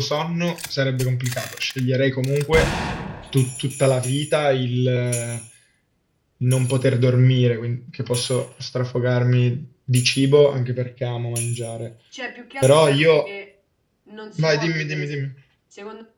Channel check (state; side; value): identical; both; correlation 1.00